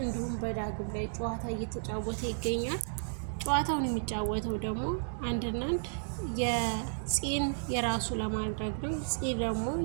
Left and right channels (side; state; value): left; silent; digital silence